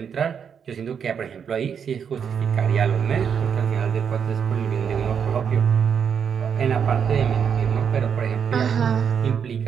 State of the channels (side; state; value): left; quieter; 7.3 dB